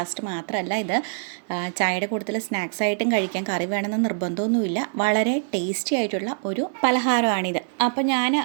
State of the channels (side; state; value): left; silent; digital silence